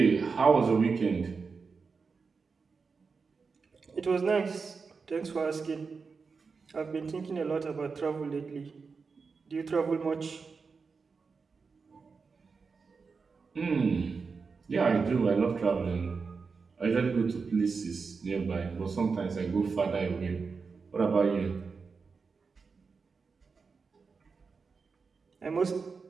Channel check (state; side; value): quieter; left; 4.9 dB